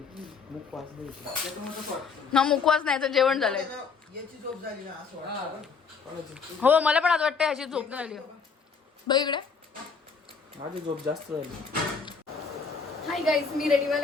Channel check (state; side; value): quieter; right; 5.3 dB